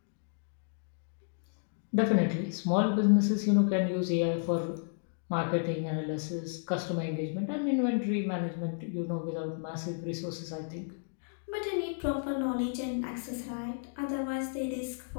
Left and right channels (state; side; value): silent; right; digital silence